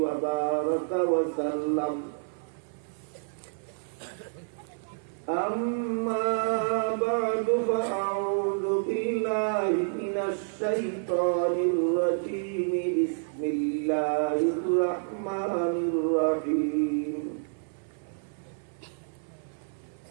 وبارك وسلم أما بعد فأعوذ بالله من الشيطان الرجيم بسم الله الرحمن الرحيم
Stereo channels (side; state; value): left; silent; 59 dB below the other